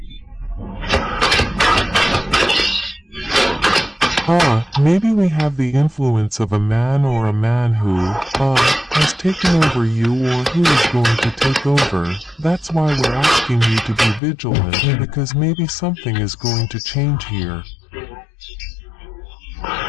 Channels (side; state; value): right; drops out; at 14.2 s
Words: Maybe we have the influence of a man or a man who, has taken over you or who is going to take over. That's why we're asking you to be vigilant, because maybe something is going to change here. There